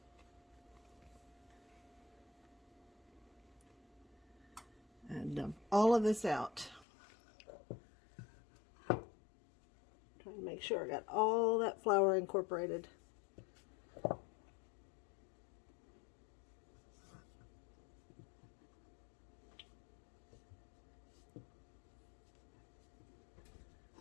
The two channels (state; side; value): drops out; right; at 6.9 s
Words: And dump all of this out. Trying to make sure I got all that flour incorporated.